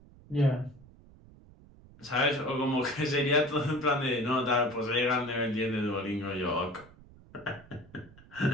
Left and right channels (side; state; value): right; noise; rumble, 23 dB below the sound